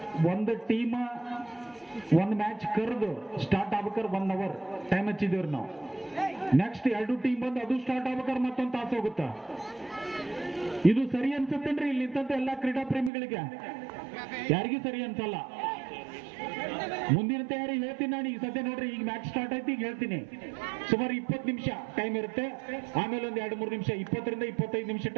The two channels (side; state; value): left; drops out; at 13.1 s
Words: ಒಂದು ಟೀಮ್ ಒಂದು ಮ್ಯಾಚ್ ಕರೆದು ಸ್ಟಾರ್ಟ್ ಆಗ್ಬೇಕಾದ್ರೆ 1 ಅವರ್ ಟೈಮ್ ಹಚ್ಚಿದೇವ್ರಿ ನಾವು. ನೆಕ್ಸ್ಟ್ 2 ಟೀಮ್ ಬಂದು ಅದು ಸ್ಟಾರ್ಟ್ ಆಗ್ಬೇಕಾದ್ರೆ ಮತ್ತೊಂದು ತಾಸು ಹೋಗುತ್ತ. ಇದು ಸರಿ ಅನ್ಸುತ್ತೇನ್ರಿ ಇಲ್ಲಿ ನಿಂತಂತ ಎಲ್ಲಾ ಕ್ರೀಡಾ ಪ್ರೇಮಿಗಳಿಗೆ? ಯಾರಿಗೂ ಸರಿ ಅನ್ಸಲ್ಲ. ಮುಂದಿನ ತಯಾರಿ ಹೇಳ್ತೀನಿ ನಾನು. ಈಗ ಸದ್ಯ ನೋಡ್ರಿ, ಈಗ ಮ್ಯಾಚ್ ಸ್ಟಾರ್ಟ್ ಆಯ್ತು, ಈಗ ಹೇಳ್ತೀನಿ. ಸುಮಾರು 20 ನಿಮಿಷ ಟೈಮ್ ಇರುತ್ತೆ. ಆಮೇಲೆ ಒಂದು 2-3 ನಿಮಿಷ, 20 ರಿಂದ 25 ನಿಮಿಷ